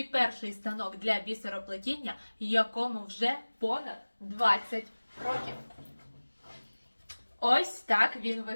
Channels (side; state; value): both; inverted; correlation -1.00